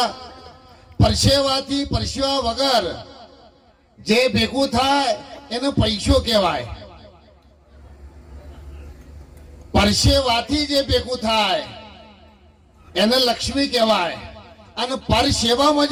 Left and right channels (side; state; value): both; identical; correlation 1.00